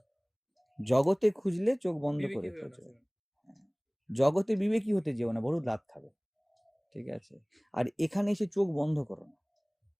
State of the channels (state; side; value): identical; both; correlation 1.00